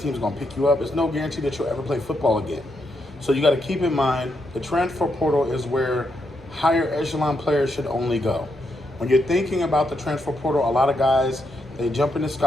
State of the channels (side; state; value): both; normal; correlation 0.81